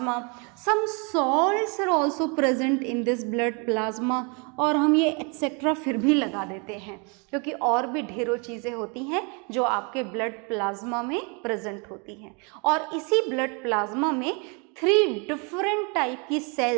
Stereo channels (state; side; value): quieter; left; 33.4 dB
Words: Some salts are also present in this blood plasma. और हम ये एक्सेट्रा फिर भी लगा देते हैं क्योंकि और भी ढेरों चीज़ें होती हैं जो आपके ब्लड प्लाज्मा में प्रेजेंट होती हैं। और इसी ब्लड प्लाज्मा में 3 डिफरेंट टाइप की